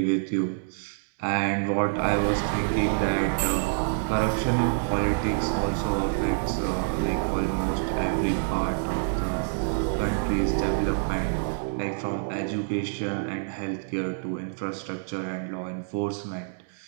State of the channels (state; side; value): silent; left; digital silence